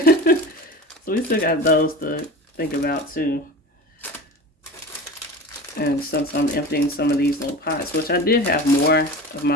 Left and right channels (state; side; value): normal; both; correlation 0.33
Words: we still got those to think about too. And since I'm emptying some of these little pots, which I did have more of my